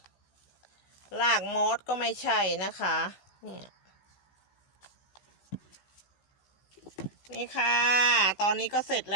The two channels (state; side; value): late; right; 15 ms